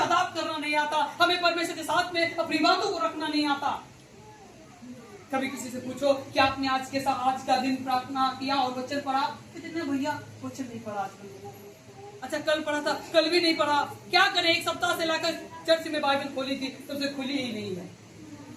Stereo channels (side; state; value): both; identical; correlation 1.00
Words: करना नहीं आता, हमें परमेश्वर के साथ में अपनी बातों को रखना नहीं आता। कभी किसी से पूछो कि आपने आज का दिन प्रार्थना किया और वचन पढ़ा? कितने भैया वचन नहीं पढ़ा आजकल। अच्छा कल पढ़ा था, कल भी नहीं पढ़ा, क्या करें? एक सप्ताह से लाकर चर्च में बाइबल खोली थी तब से खुली ही नहीं है।